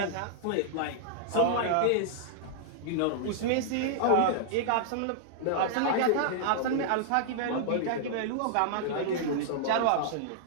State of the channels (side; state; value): both; different; correlation -0.01